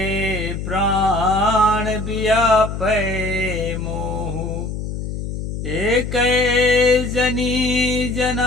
प्राण व्यापै मोहू। एक जनी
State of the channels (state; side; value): noise; left; hum, 6 dB below the sound